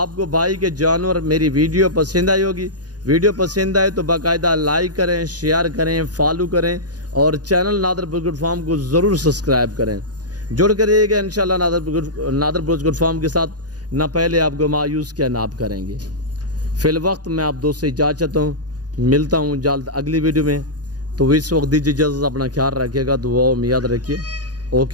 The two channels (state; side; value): late; left; 0.69 ms